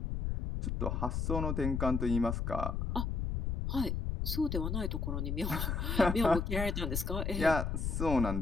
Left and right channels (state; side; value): noise; left; rumble, 1 dB below the sound